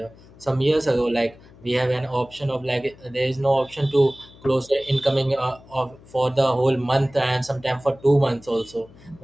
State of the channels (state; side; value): noise; left; hum, 23 dB below the sound